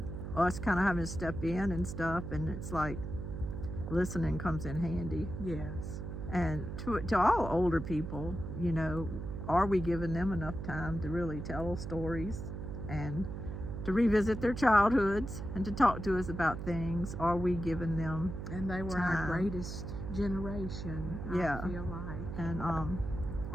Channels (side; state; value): right; noise; hum, 6 dB below the sound